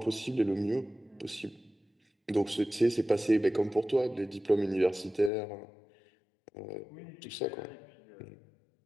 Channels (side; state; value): right; drops out; at 5.3 s